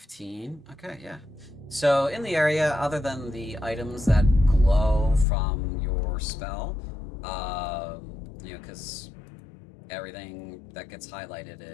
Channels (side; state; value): right; drops out; at 5.2 s